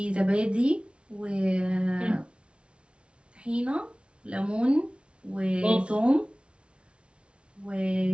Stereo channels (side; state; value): left; late; 0.058 ms